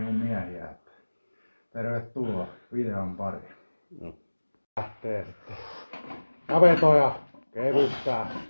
miehiä. Tervetuloa videon pariin. No. Lähtee sitten. Ja vetoja kevyttää.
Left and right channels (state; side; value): inverted; both; correlation -1.00